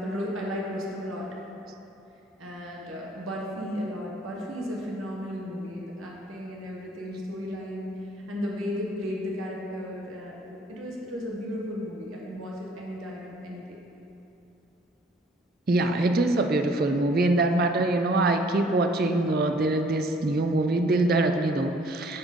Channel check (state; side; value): normal; both; correlation 0.58